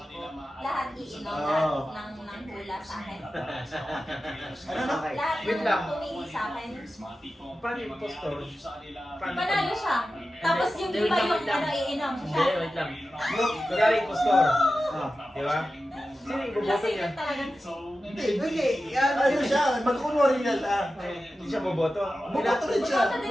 ko, lahat iinom, Oo. lahat ng hula sa akin. Ano na? Lahat Wait ng lang. tumingin sa akin. Paano yung postor? Panalo siya. Tapos yung iba yung ano, iinom siya. Hindi, wait lang. Kunwari yung postor. Di ba? Sino yung boboto Kasi niya? yun talagang Hindi. Ano siya? Magkunwari na siya. Hindi siya boboto. Buboto rin siya. Boboto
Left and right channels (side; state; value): both; normal; correlation 0.93